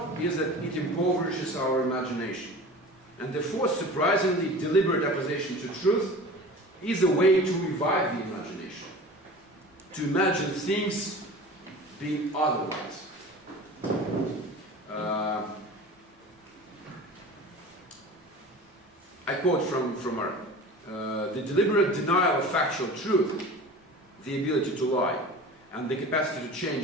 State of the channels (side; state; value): both; normal; correlation 0.37